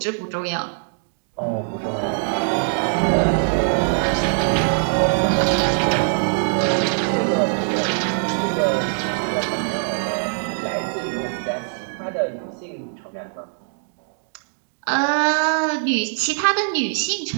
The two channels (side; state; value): left; silent; digital silence